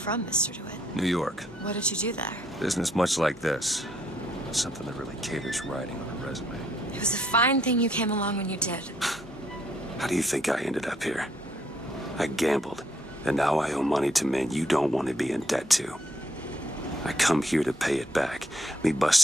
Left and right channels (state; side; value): normal; both; correlation 0.70